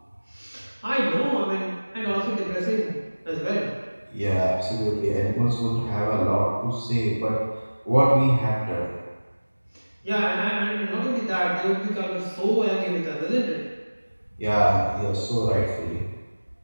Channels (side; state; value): both; inverted; correlation -1.00